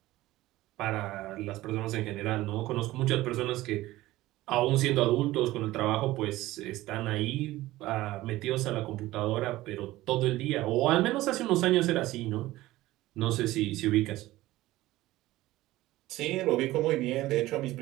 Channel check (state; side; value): quieter; left; 17.0 dB